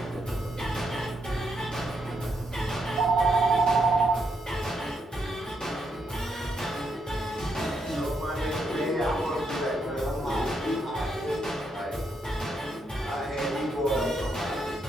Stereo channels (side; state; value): both; normal; correlation 0.78